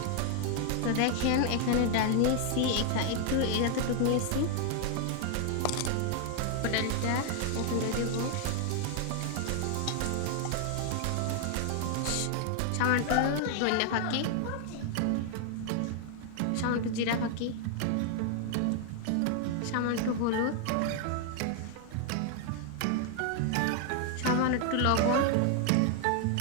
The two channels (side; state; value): both; different; correlation 0.00